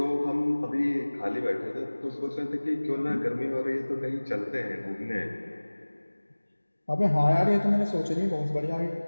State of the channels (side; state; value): both; inverted; correlation -1.00